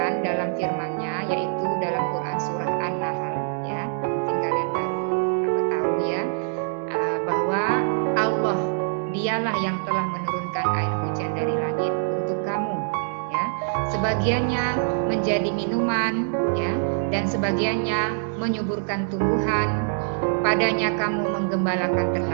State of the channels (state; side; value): silent; left; digital silence